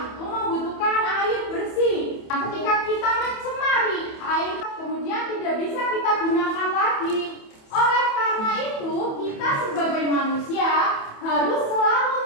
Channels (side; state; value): right; late; 28 ms